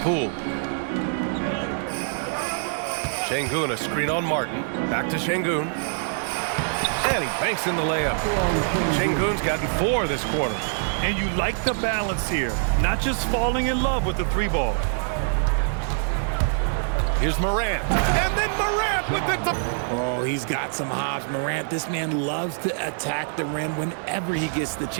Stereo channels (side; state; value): left; silent; digital silence